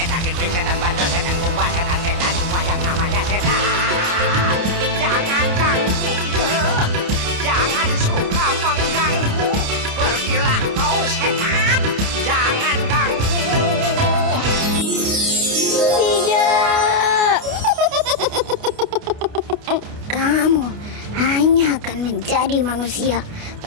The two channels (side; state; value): left; late; 29 ms